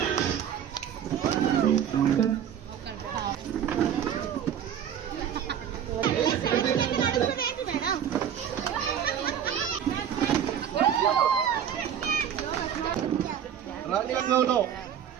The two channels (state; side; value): quieter; left; 9.1 dB